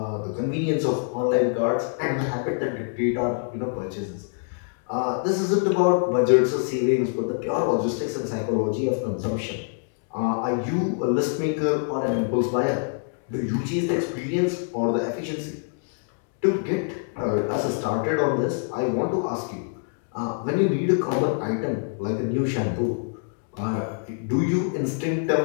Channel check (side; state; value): right; silent; 62 dB below the other